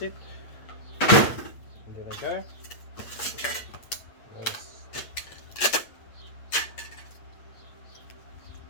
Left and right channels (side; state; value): right; late; 8.3 ms